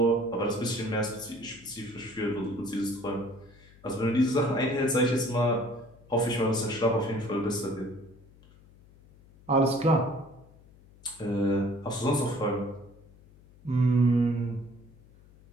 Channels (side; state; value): left; noise; hum, 25 dB below the sound